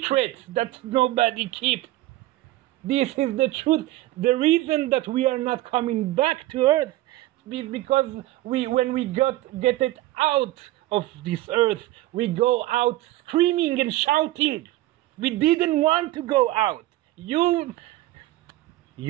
that nobody keeps. This is the truth. The reason that we are not coming back to earth is because when we get it out of this earth, we go out screaming and shouting. We didn't want to go out. You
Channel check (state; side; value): quieter; left; 16.6 dB